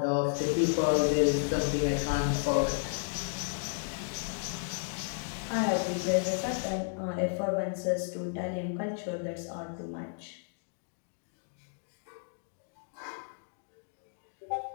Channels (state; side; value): silent; right; 56 dB below the other